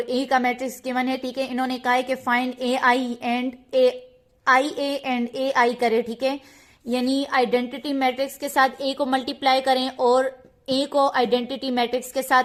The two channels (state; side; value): identical; both; correlation 1.00